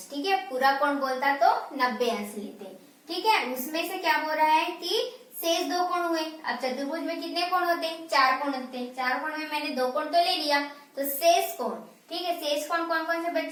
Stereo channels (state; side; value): identical; both; correlation 1.00